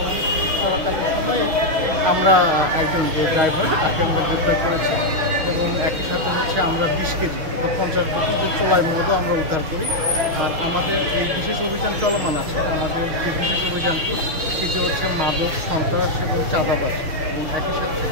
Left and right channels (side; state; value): left; late; 6.4 ms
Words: করাকালীন সময়ে আমরা একজন যে ড্রাইভার তাকে আমরা গ্রেপ্তার করেছি এবং একই সাথে হচ্ছে আমরা 20 কেজি অর্থাৎ 50 বোতল যে চোলাই মদও আমরা উদ্ধার করি। আর আমাদের এই বিশেষ অভিযান চলমান আছে। আমাদের যে বিশেষ অভিযানটি সেটি হচ্ছে মাদক, সন্ত্রাস এবং চাঁদাবাজ এবং একই সাথে